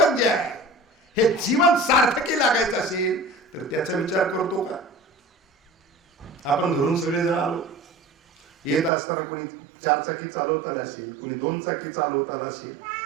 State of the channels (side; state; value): left; drops out; at 8.9 s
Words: जे आहे, हे जीवन सार्थकी लागायचं असेल तर त्याचा विचार करतो का? आपण घरून सगळेजण आलो, येत असताना कोणी 4 चाकी चालवता आला असेल, कोणी 2 चाकी चालवता आला असेल.